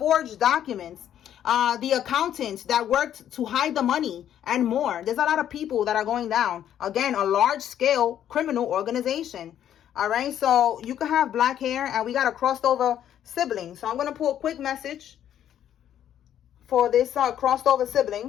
documents. The accountants that worked to hide the money and more. There's a lot of people that are going down. Again, a large scale criminal organization. All right, so you can have black hair, and we got a crossed over sibling. So I'm going to pull a quick message for this crossed over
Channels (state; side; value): quieter; right; 10.5 dB